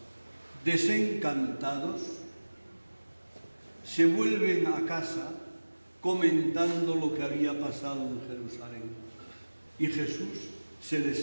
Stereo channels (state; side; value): inverted; both; correlation -1.00